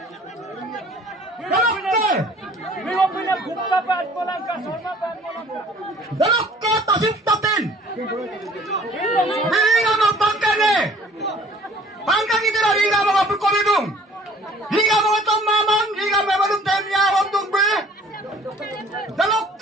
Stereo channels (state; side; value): normal; both; correlation 0.53